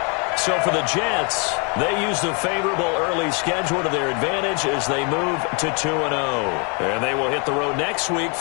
So for the Jets, they use the favorable early schedule to their advantage as they move to 2-0. And they will hit the road next week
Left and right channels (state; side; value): quieter; right; 35.0 dB